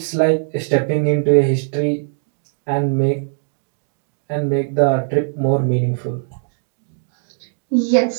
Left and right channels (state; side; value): silent; left; digital silence